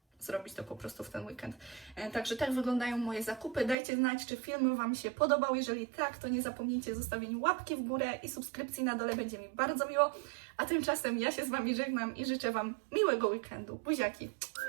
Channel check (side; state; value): left; drops out; at 3.8 s